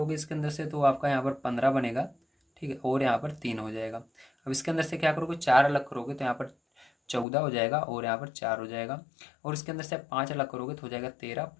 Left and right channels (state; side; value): drops out; right; at 7.2 s